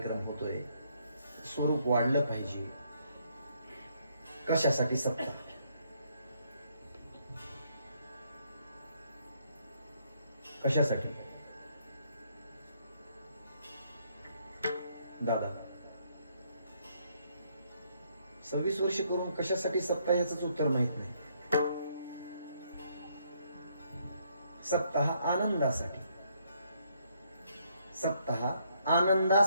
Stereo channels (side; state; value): both; inverted; correlation -0.71